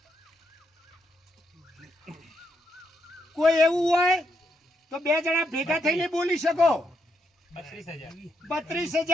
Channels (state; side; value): normal; both; correlation 0.79